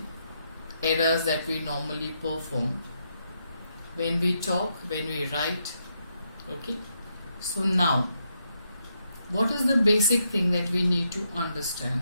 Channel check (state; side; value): inverted; both; correlation -0.80